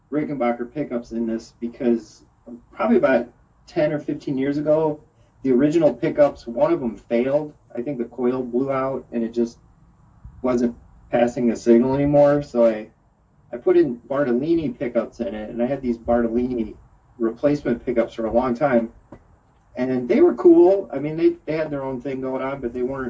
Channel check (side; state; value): both; identical; correlation 1.00